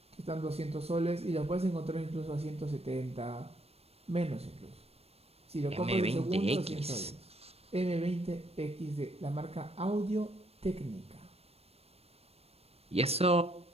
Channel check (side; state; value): left; late; 0.29 ms